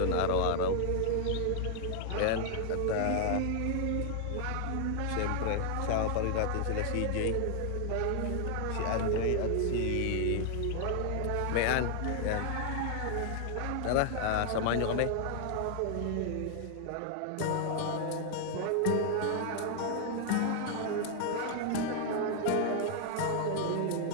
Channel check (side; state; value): both; different; correlation 0.00